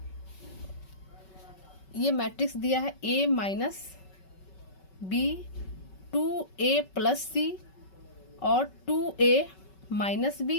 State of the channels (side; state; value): right; late; 5.3 ms